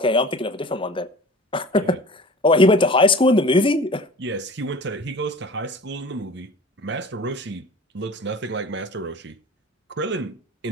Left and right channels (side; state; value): both; normal; correlation 0.41